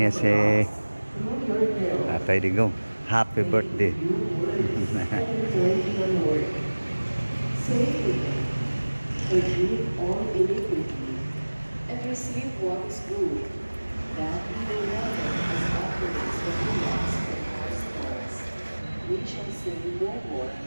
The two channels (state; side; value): inverted; both; correlation -1.00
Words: si Tatay Digong. Happy birthday. Say to him, forgive all iniquity, and receive what is good, that we may render as offerings the freedoms of our souls. We shall say no more,